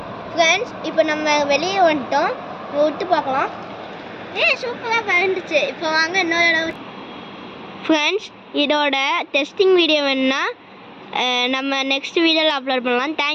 ஃப்ரெண்ட்ஸ், இப்போ நம்ம வெளியே வந்துட்டோம். விட்டு பார்க்கலாம். சூப்பராக கலந்துச்சு. இப்போ வாங்க இன்னொரு ஃப்ரெண்ட்ஸ், இதோட டெஸ்டிங் வீடியோ வேணுன்னா நம்ம நெக்ஸ்ட் வீடியோவில் அப்லோட் பண்ணலாம்.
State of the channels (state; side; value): identical; both; correlation 1.00